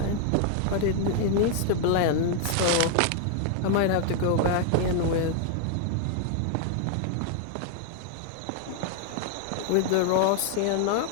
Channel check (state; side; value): different; both; correlation 0.00